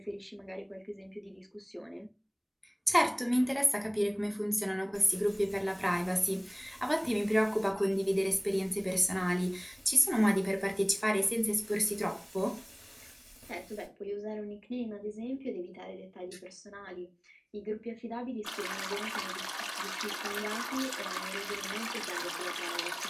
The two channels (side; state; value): both; identical; correlation 1.00